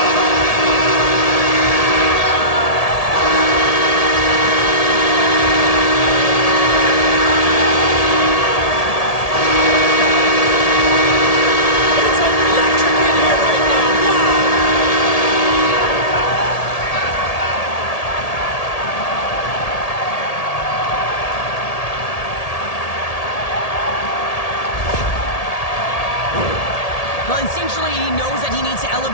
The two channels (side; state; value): right; late; 1.8 ms